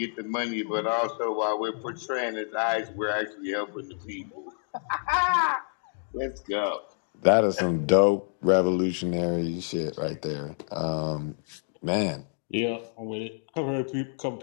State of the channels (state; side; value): silent; right; 59 dB below the other